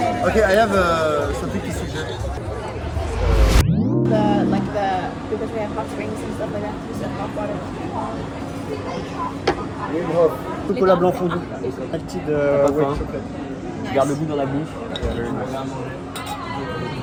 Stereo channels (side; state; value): both; identical; correlation 1.00